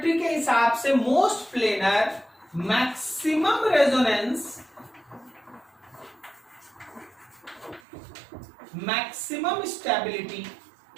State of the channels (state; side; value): drops out; left; at 7.8 s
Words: के हिसाब से most planar, maximum resonance, maximum stability,